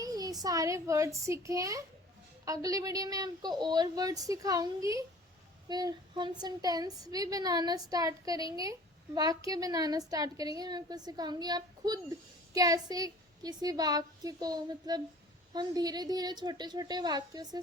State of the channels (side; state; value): both; normal; correlation 0.47